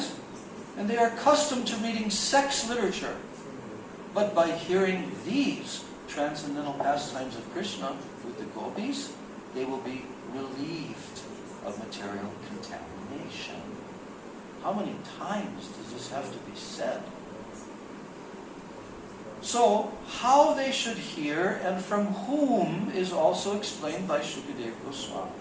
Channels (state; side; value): identical; both; correlation 1.00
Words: and they are accustomed to reading sex literature. But by hearing these transcendental pastimes of Krishna with the gopis, they will be relieved of material contamination. How many times does this have to be said? So, how they should hear and from whom is also explained by Shukadeva Goswami.